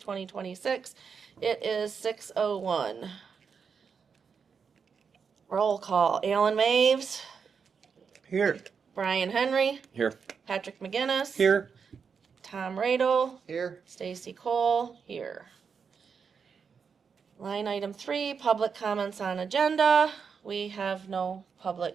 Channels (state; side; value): quieter; left; 6.1 dB